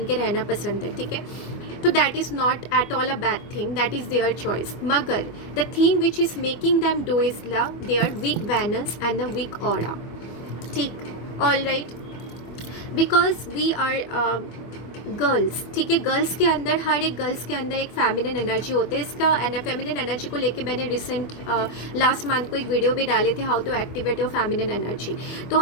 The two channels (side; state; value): right; late; 24 ms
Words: के रहना पसंद है। ठीक है, तो that is not at all a bad thing, that is their choice, मगर the thing which is making them do is their weak veins and the weak aura. ठीक, all right, because we are girls, ठीक है, girls के अंदर, हर एक girls के अंदर एक फेमिनिन एनर्जी होती है। इसका फेमिनिन एनर्जी को लेके मैंने रिसेंट लास्ट मंथ को एक वीडियो भी डाले थे, how to activate your feminine energy. तो